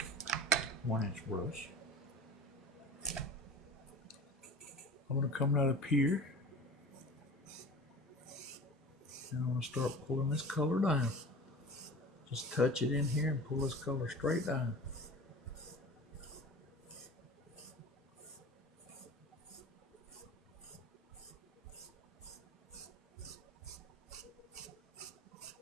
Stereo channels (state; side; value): normal; both; correlation 0.38